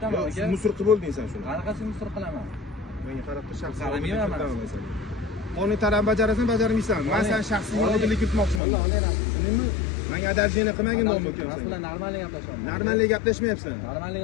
Yo'q, aka. musor qilib bo'lding sen shuni. Qanaqasi musor qilaman? Menga qarab tur, shaxsiy Qaramayman men. Qonun talabini bajarasan, bajarmaysan. Men sen shaxsiy odillik kiritmoqchiman. Tushundingmi? Menga adajini qilmagin dom Mas ekansan. bilan normalniy gaplashaman. Normalniy gaplashmayapsan.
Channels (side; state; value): right; drops out; at 8.6 s